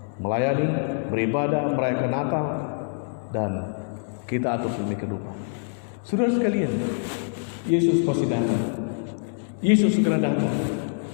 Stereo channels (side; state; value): right; silent; 62 dB below the other